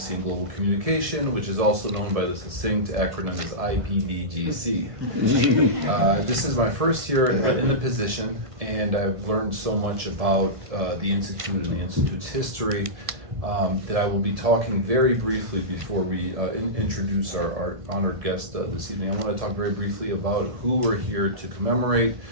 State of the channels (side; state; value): left; late; 1.5 ms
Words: and Global Communication, which is also known by the succinct acronym as IPDGC. This is my first year in the position, and I've learned so much about the Institute and the Institute's history that I will be talking very briefly before we introduce our honored guest this evening. I want to talk very briefly about who we're here to commemorate